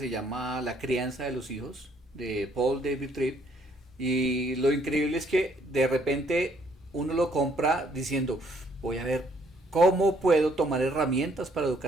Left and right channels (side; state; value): both; normal; correlation 0.66